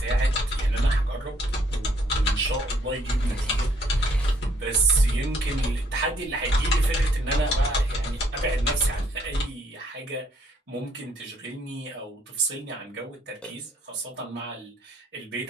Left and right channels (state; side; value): normal; both; correlation 0.66